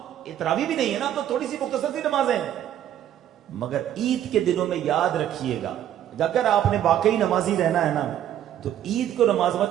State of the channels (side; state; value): left; quieter; 11.1 dB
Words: تراویح بھی نہیں ہے نا، اب تو تھوڑی سی مختصر سی نمازیں ہیں. مگر عید کے دنوں میں یاد رکھیے گا، اگر آپ نے واقعی نمازی رہنا ہے نا تو عید کو نماز